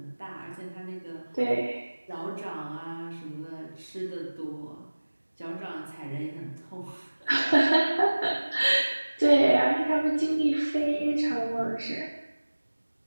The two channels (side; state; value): both; inverted; correlation -1.00